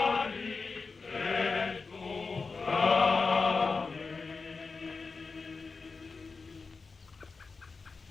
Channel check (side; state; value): right; quieter; 4.4 dB